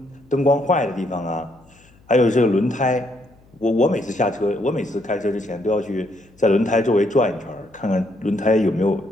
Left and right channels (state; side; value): noise; left; hum, 29 dB below the sound